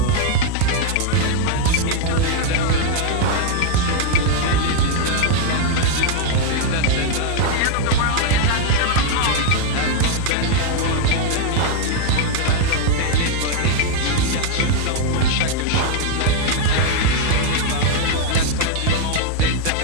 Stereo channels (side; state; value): both; different; correlation 0.00